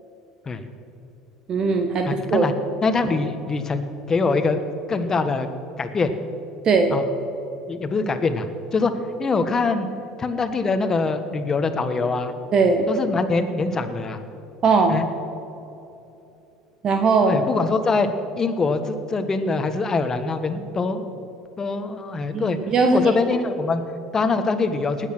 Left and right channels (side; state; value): both; normal; correlation 0.66